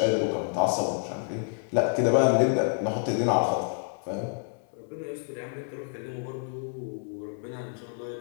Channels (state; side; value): silent; right; 59 dB below the other